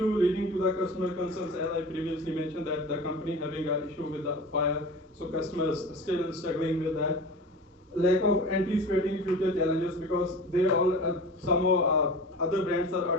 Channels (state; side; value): normal; both; correlation 0.35